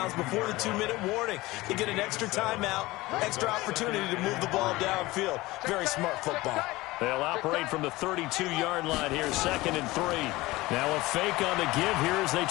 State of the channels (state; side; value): quieter; right; 19.8 dB